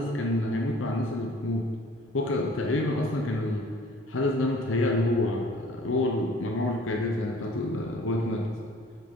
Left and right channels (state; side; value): normal; both; correlation 0.51